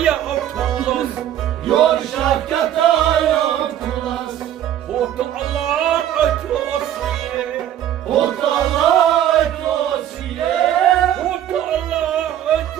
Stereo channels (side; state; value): left; quieter; 11.2 dB